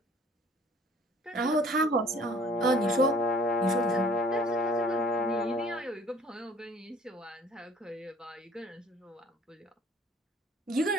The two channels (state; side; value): normal; both; correlation 0.54